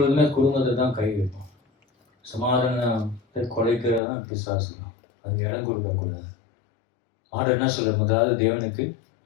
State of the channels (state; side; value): drops out; right; at 4.0 s